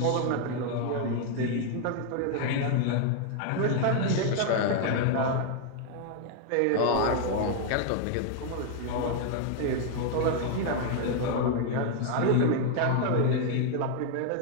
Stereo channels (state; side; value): different; both; correlation 0.00